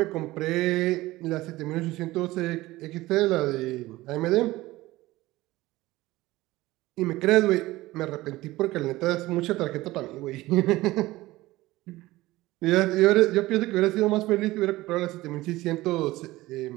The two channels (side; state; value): left; quieter; 18.3 dB